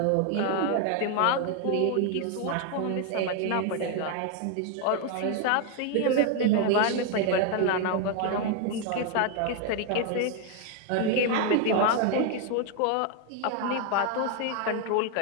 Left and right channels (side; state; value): both; different; correlation 0.01